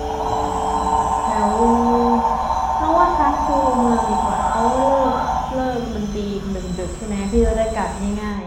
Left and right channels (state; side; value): identical; both; correlation 1.00